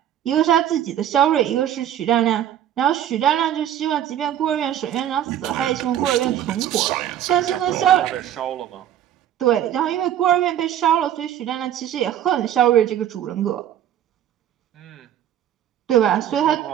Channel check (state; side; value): quieter; left; 10.8 dB